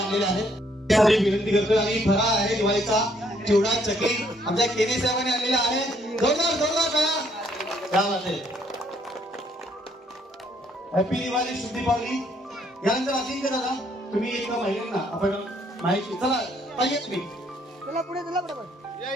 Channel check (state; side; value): normal; both; correlation 0.68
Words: आहेत. त्यासाठी विनंती करतो. आणि फराळ आहे दिवाळीचा चिवडा चकली आमच्या केने साहेबांनी आणलेला आहे. जोरदार करा. हॅपी दिवाळी शुभ दीपावली. यानंतर अजिंक्य दादा तुम्ही एक महिलांना आपण माहिती. चला पाहिजे तुम्ही